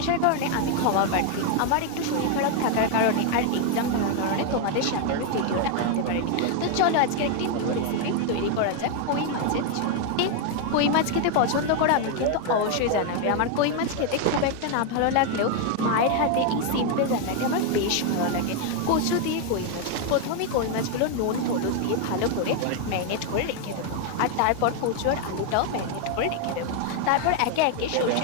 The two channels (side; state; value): both; different; correlation 0.01